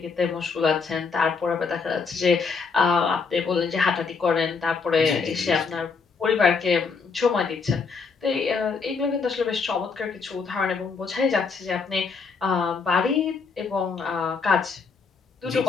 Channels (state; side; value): quieter; right; 5.1 dB